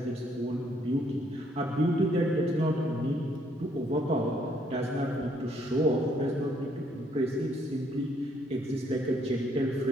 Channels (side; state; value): both; normal; correlation 0.68